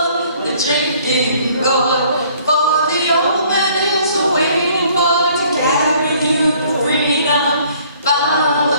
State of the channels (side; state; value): both; inverted; correlation -0.59